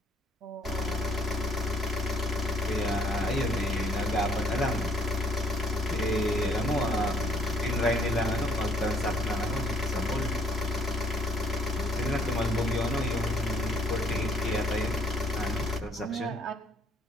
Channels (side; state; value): both; normal; correlation 0.63